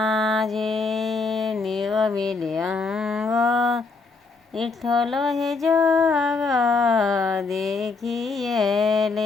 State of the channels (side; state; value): right; quieter; 4.1 dB